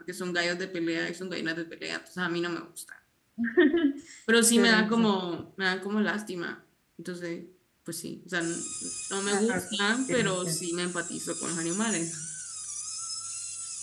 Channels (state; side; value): identical; both; correlation 1.00